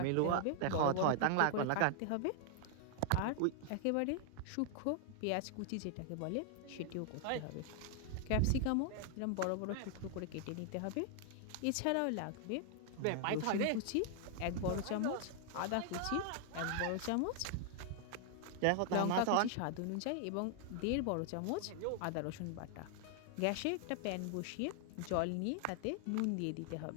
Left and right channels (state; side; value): different; both; correlation 0.00